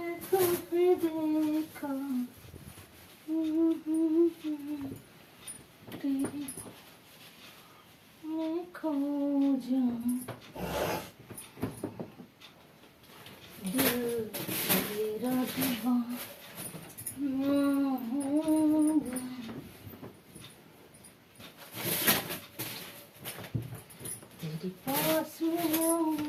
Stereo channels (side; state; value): both; identical; correlation 1.00